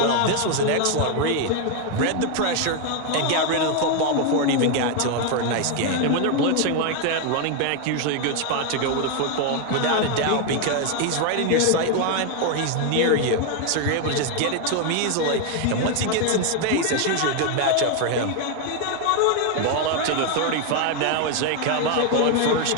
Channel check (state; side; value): different; both; correlation 0.01